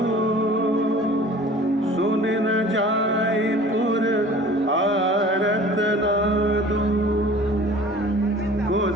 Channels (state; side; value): normal; both; correlation 0.46